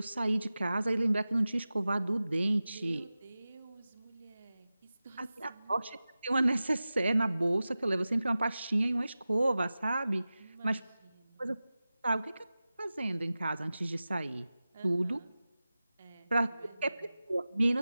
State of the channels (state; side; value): inverted; both; correlation -0.95